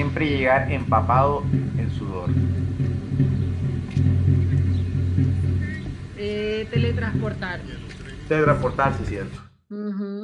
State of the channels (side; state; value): both; identical; correlation 1.00